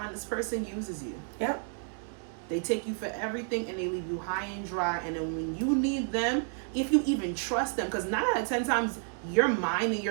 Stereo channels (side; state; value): left; silent; 57 dB below the other